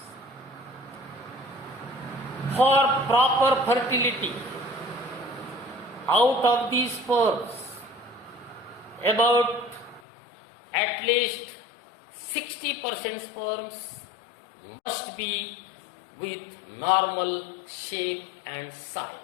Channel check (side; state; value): right; drops out; at 10.0 s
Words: For proper fertility, out of these sperms, about at least 60% sperms must be with normal shape and